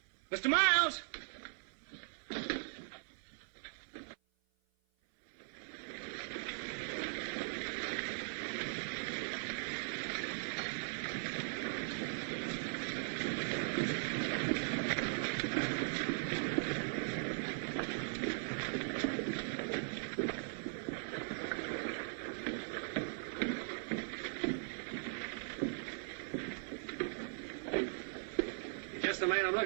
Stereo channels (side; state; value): left; silent; 51 dB below the other